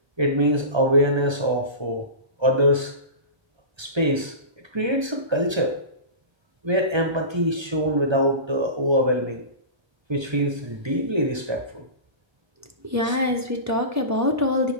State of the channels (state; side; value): late; left; 1.3 ms